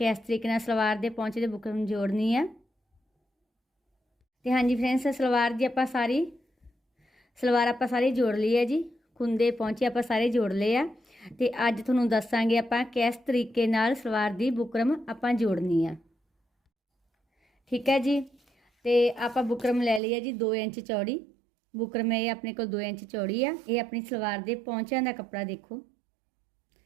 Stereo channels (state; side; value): drops out; left; at 20.0 s